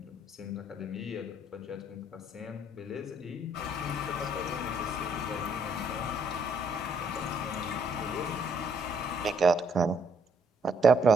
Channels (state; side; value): normal; both; correlation 0.68